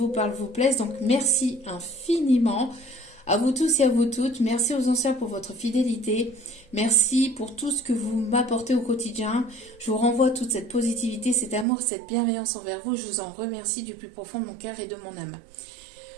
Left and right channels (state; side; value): drops out; left; at 11.7 s